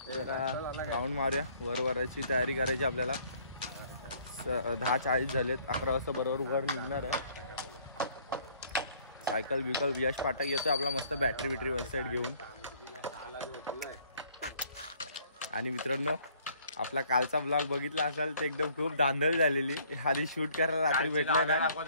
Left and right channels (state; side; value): inverted; both; correlation -0.59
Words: जरा राऊंड मारूया. वराची तयारी करायची आपल्याला. 10:40 झालेत. 11 वाजता बरोबर वर निघणार आहे. सायकल बिकल यश पाठक येतोय आपला मस्त बॅटरी वन साइड घेऊन. आणि मित्रांनो आपला कालचा ब्लॉग बघितला असाल ते एकदम खूप धांदल झालेली. आधी शूट करायला रात्री भेटलंय ना.